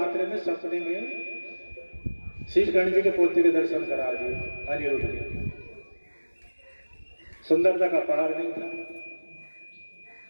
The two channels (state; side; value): inverted; both; correlation -1.00